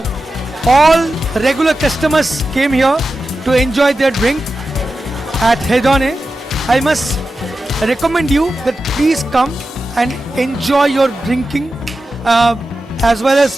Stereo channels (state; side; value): normal; both; correlation 0.92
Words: all regular customers came here to enjoy their drink at Hedonne. I must recommend you that please come and enjoy your drinking as well as